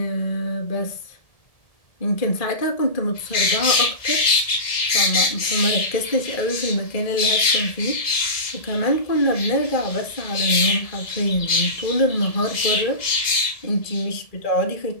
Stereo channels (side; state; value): right; late; 1.7 ms